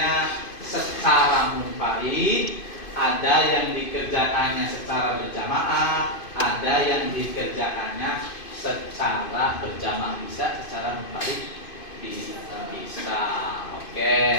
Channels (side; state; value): right; late; 2.5 ms